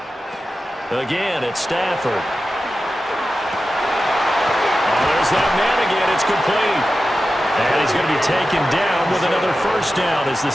Again, it's Stafford. Oh, there's that man again. It's complete. And he's going to be taken down with another first down as the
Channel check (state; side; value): normal; both; correlation 0.93